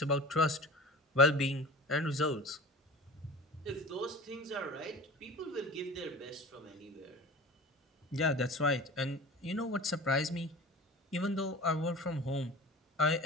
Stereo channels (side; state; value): both; normal; correlation 0.37